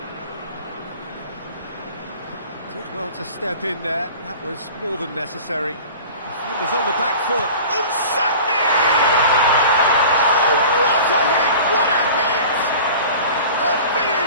Did well to step in there. That was more than necessary. Defenders on the back foot. Unsakni! Oh, what a hit! What a hit! A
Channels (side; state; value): both; inverted; correlation -0.40